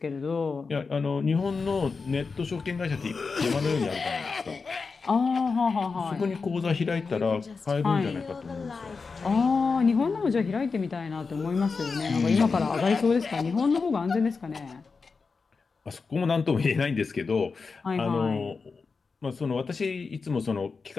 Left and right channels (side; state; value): right; quieter; 4.7 dB